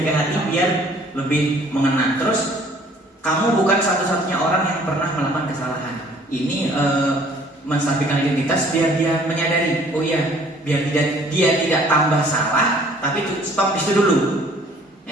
ke hati biar lebih mengena. Terus kamu bukan satu-satunya orang yang pernah melakukan kesalahan. Ini menstabilkan identitas biar dia menyadari, oh iya, biar dia tidak tambah salah, tapi stop di situ dulu.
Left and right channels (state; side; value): normal; both; correlation 0.56